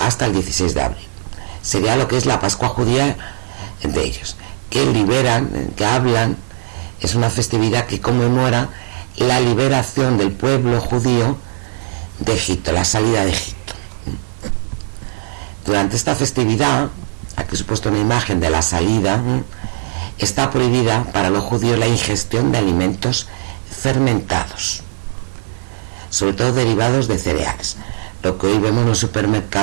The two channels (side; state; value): left; silent; digital silence